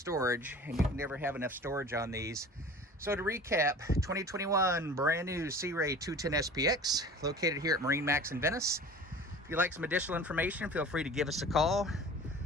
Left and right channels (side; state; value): both; normal; correlation 0.41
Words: and you can never have enough storage on these. So to recap, 2021 brand new Sea Ray 210 SPX, located here at MarineMax in Venice. If you'd like some additional information, feel free to give us a call.